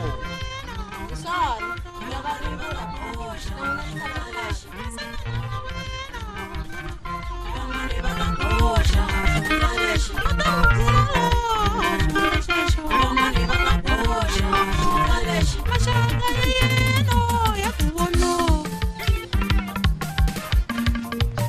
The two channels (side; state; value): both; identical; correlation 1.00